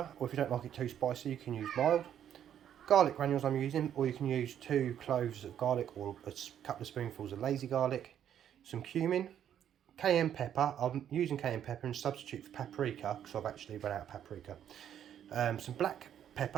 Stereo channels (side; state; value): left; quieter; 9.9 dB